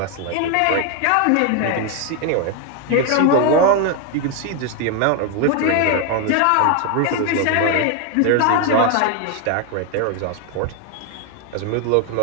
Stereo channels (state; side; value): different; both; correlation 0.01